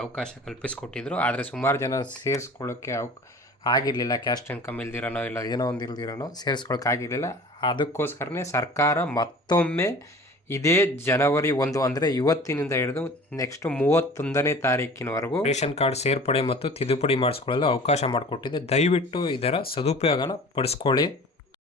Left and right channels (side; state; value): both; normal; correlation 0.43